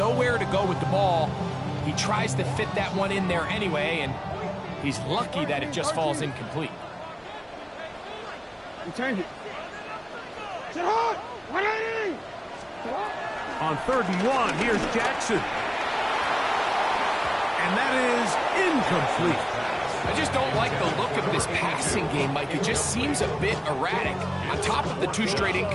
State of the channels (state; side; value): identical; both; correlation 1.00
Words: to go with the ball. He tries to fit that one in there anyway, and he's lucky that it just falls incomplete. Change it. Sit hard! 180! On 3rd and 1, here's Jackson. And that is incomplete. I just don't like the look of this passing game, Mike. It just seems a bit erratic. On top of the 2 straight